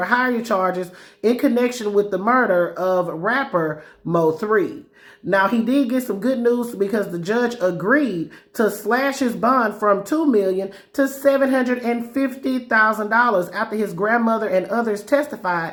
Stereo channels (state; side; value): identical; both; correlation 1.00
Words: hire charges in connection with the murder of rapper Mo3. Now, he did get some good news because the judge agreed to slash his bond from $2 million to $750,000 after his grandmother and others testified